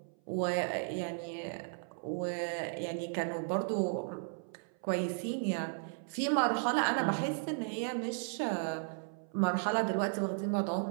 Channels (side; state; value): left; silent; 54 dB below the other